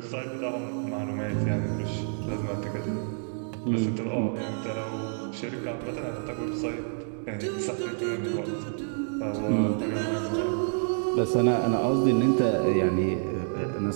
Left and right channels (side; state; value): left; silent; digital silence